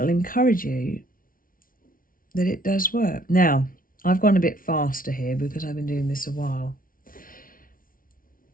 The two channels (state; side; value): late; right; 0.41 ms